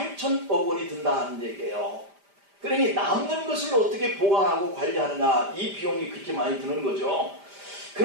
원이 든다는 얘기예요. 그러니 남는 것을 어떻게 보관하고 관리하느냐, 이 비용이 그렇게 많이 드는 거죠.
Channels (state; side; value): late; left; 5.0 ms